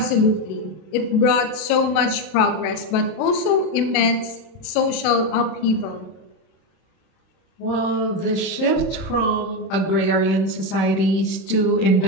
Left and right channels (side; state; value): right; late; 32 ms